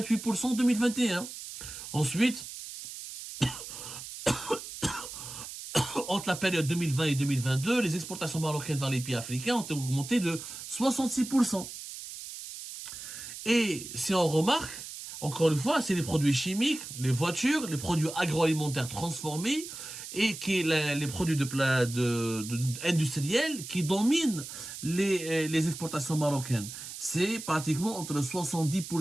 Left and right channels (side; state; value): right; noise; hiss, 10 dB below the sound